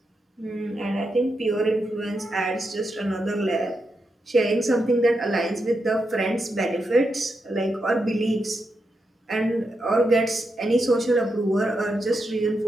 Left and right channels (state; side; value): normal; both; correlation 0.85